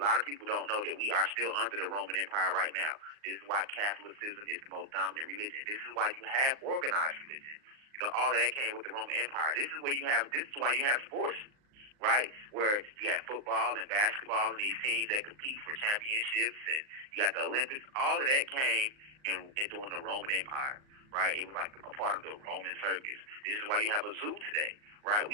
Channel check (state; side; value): late; left; 39 ms